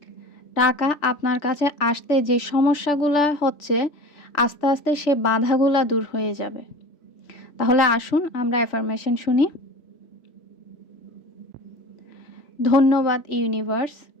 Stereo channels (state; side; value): late; right; 3.1 ms